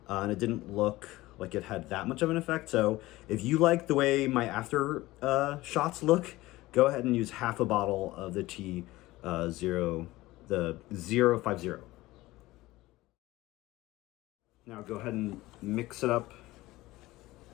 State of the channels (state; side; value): quieter; right; 18.5 dB